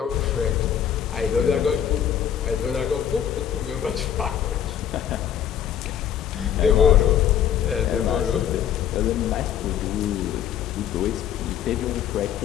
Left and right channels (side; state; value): right; quieter; 9.4 dB